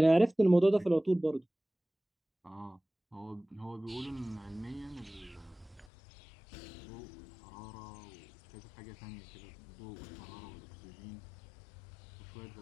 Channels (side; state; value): right; drops out; at 5.9 s